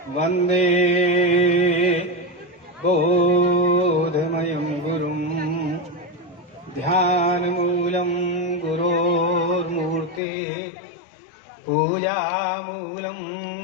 वन्दे बोधमयं गुरुं ध्यानमूलं गुरोर्मूर्ति पूजामूलं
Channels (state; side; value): drops out; right; at 10.2 s